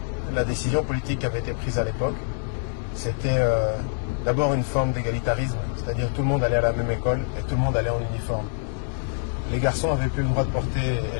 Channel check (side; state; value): right; silent; digital silence